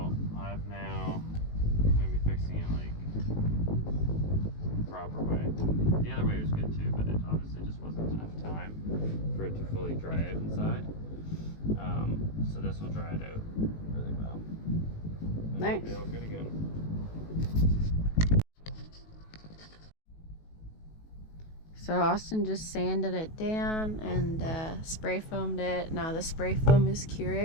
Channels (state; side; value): late; right; 19 ms